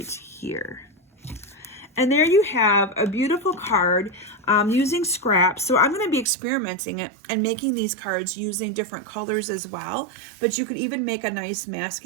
here. And there you have a beautiful card using scraps. So I'm going to be experimenting it and making these cards using different colors as well. But you could even make a nice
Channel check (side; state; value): left; drops out; at 6.2 s